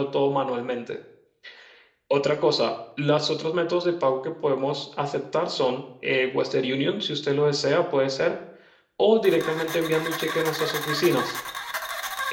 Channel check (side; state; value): both; identical; correlation 1.00